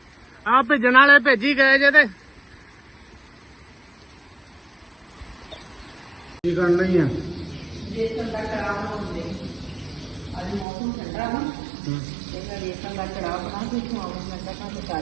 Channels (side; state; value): left; drops out; at 10.7 s